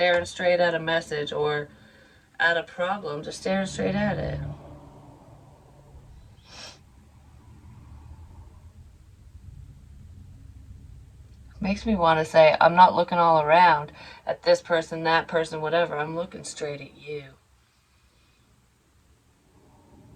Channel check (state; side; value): identical; both; correlation 1.00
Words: straight at a message or at a problem, just staring straight at it. Makes me want to say, I'm not looking all around at this person, that person, whatever. I'm looking straight at you.